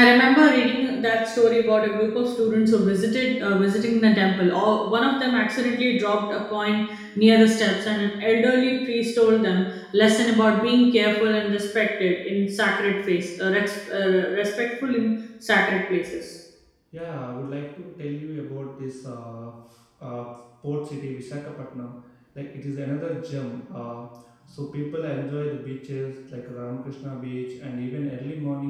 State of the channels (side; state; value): both; identical; correlation 1.00